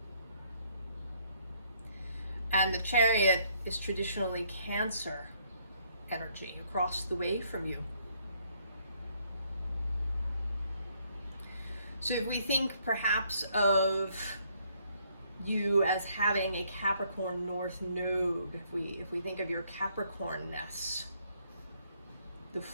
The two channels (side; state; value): both; inverted; correlation -0.68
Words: And the Chariot is traditionally Cancer energy across the way from you. So if we think perhaps of you as having a Capricorn North Node, if we think of your Capricornness, the